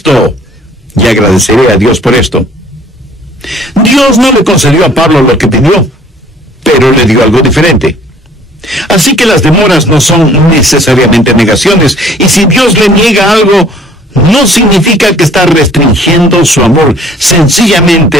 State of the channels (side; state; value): both; normal; correlation 0.55